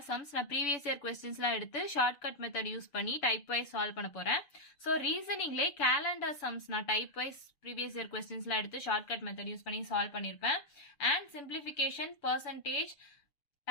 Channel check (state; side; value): late; right; 7.0 ms